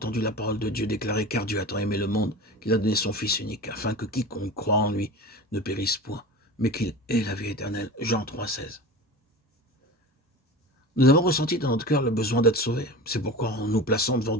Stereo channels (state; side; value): normal; both; correlation 0.33